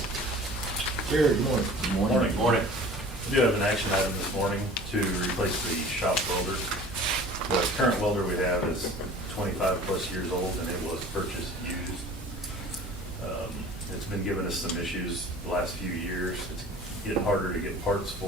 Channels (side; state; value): both; normal; correlation 0.44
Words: Jared, good morning. Good morning. Morning. We do have an action item this morning to replace the shop welder. The current welder we have is 25+ years old, and it was purchased used. It's been giving us some issues the last few years. It's getting harder to get parts